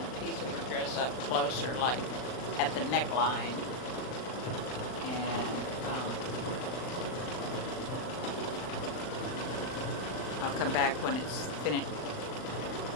piece of her dress up closer, like at the neckline. And I'll come back when it's finished.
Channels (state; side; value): late; right; 39 ms